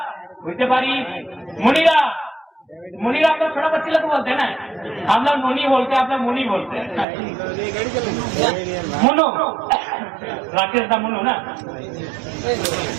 বুঝতে পারি। मुनीरा मुनीरा आप लोग छोटा बच्चे लोग बोलते हैं ना, हम लोग मुनी बोलते हैं, आप लोग मुनी बोलते हैं। मुनु राकेश का मुनु ना।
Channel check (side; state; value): left; drops out; at 7.1 s